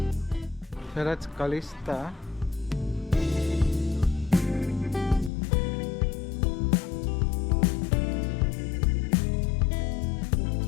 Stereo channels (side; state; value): right; drops out; at 5.3 s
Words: So that's Calista.